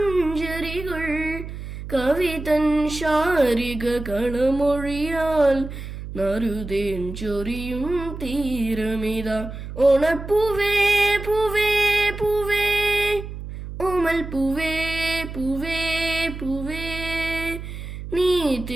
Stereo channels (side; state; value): right; noise; hum, 9 dB below the sound